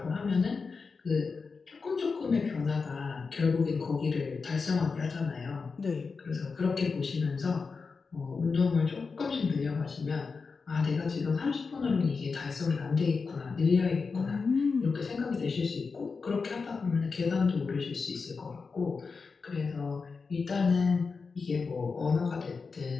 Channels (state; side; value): quieter; right; 4.8 dB